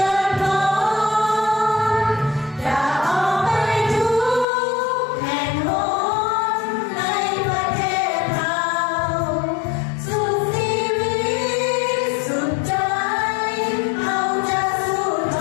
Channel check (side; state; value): right; drops out; at 4.5 s